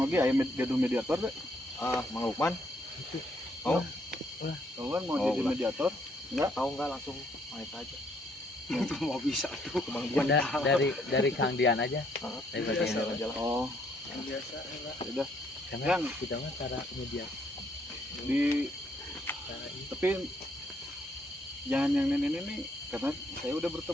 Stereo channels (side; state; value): both; normal; correlation 0.69